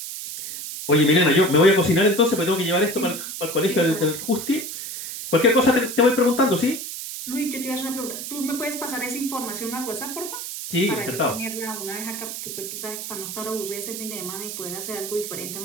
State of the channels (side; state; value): right; noise; hiss, 7 dB below the sound